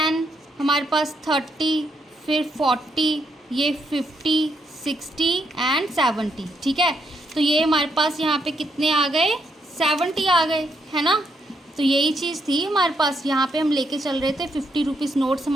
हमारे पास 30, फिर 40, ये 50 60 एंड 70, ठीक है। तो ये हमारे पास यहाँ पे कितने आ गए 70 आ गए, है ना। तो यही चीज़ थी हमारे पास, यहाँ पे हम लेके चल रहे थे 50 रुपीज़ नोट्स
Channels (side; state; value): both; normal; correlation 0.77